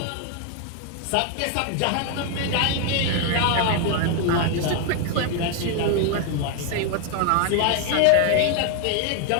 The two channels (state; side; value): different; both; correlation 0.00